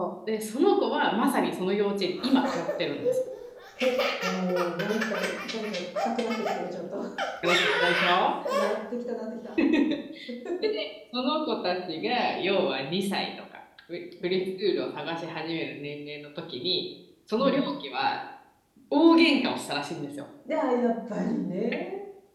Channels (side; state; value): both; identical; correlation 1.00